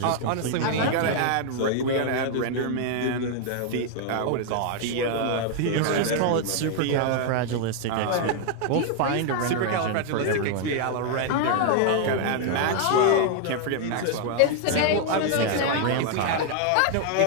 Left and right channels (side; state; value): both; different; correlation 0.00